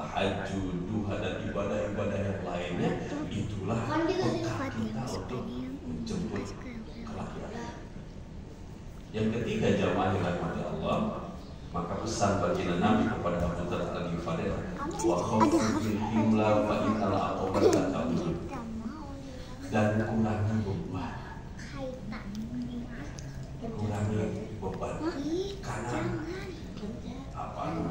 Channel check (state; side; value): identical; both; correlation 1.00